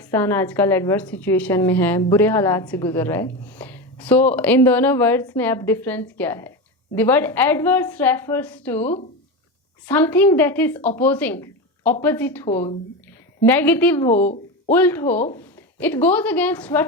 आजकल एडवर्स सिचुएशन में है, बुरे हालात से गुजर रहा है। सो इन दोनों वर्ड्स में अब डिफरेंस क्या है? The word adverse refers to something that is opposing, opposite हो, नेगेटिव हो, उल्ट हो। It goes against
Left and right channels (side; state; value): both; normal; correlation 0.20